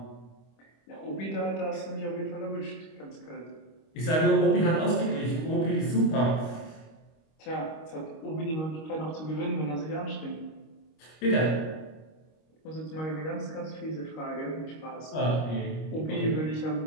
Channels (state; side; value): late; right; 25 ms